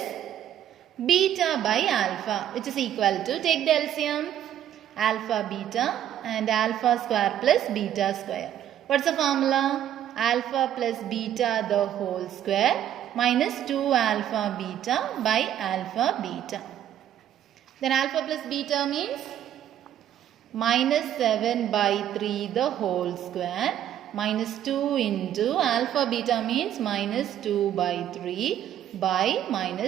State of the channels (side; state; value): left; quieter; 10.9 dB